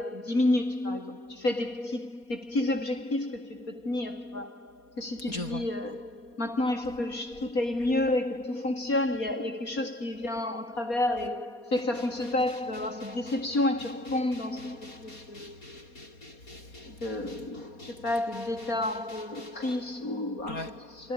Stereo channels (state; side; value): late; right; 4.2 ms